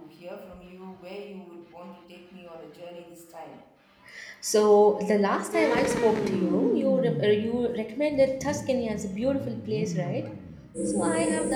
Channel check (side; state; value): both; identical; correlation 1.00